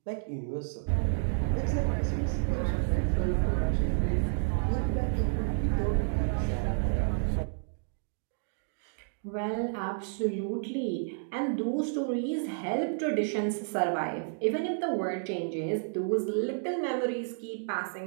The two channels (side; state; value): left; silent; digital silence